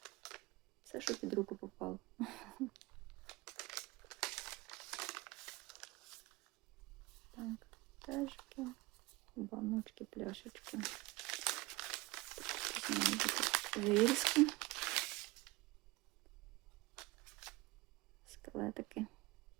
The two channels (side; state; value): left; quieter; 22.5 dB